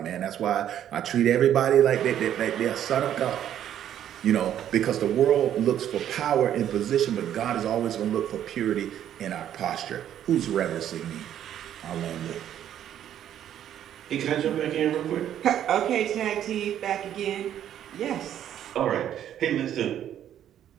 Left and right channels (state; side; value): quieter; left; 10.6 dB